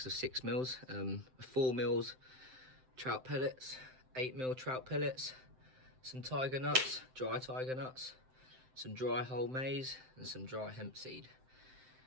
of 6mm, 4mm trout pellets, 8mm trout pellets, some tiger nuts, dry tiger nuts, some dry whole maize, and some dry hemp seed.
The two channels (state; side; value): late; left; 7.7 ms